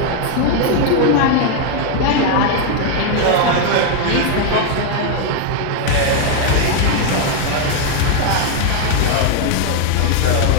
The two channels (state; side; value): different; both; correlation 0.00